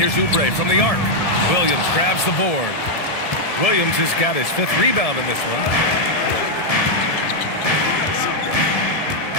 Oubre from the arc. Williams grabs the board. Williams has got his 5th rebound in this one.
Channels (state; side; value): late; right; 1.7 ms